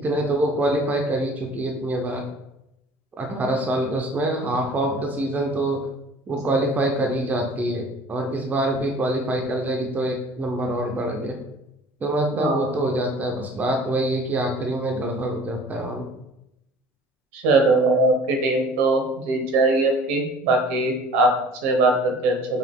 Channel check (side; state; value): both; normal; correlation 0.48